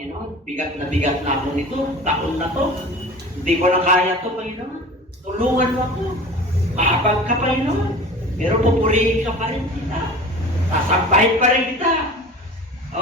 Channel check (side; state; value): both; normal; correlation 0.39